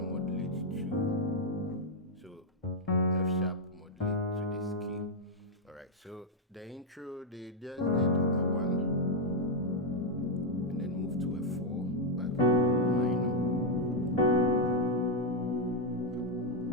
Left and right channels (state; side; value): normal; both; correlation -0.02